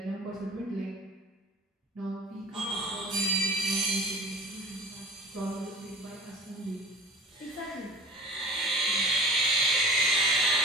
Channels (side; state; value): both; normal; correlation 0.42